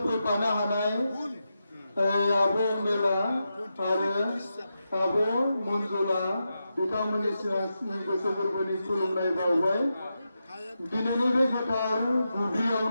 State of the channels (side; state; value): both; inverted; correlation -0.88